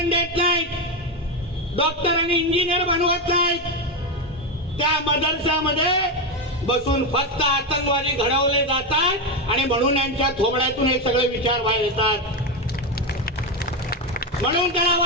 देत नाहीत, डॉक्टर आणि इंजिनियर बनवत नाहीत. त्या मदरशामध्ये बसून फक्त आतंकवादी घडवले जातात आणि म्हणून यांच्या थोबड्यातून हे सगळे विचार बाहेर येतात. म्हणून त्याला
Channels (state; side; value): normal; both; correlation 0.11